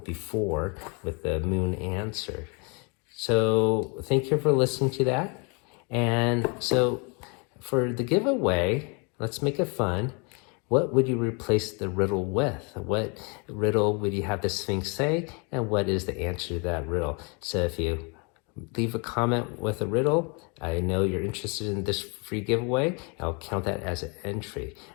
with the moon answer. So thank you for listening to that. And so for the giveaway, let's make it fun. What would you replace the riddle with? What riddle would you have the Sphinx say? And what is the answer to that riddle? So if you leave a comment with a riddle, I know you're interested in this free giveaway. I'll count that as an entry.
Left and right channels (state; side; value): quieter; right; 33.1 dB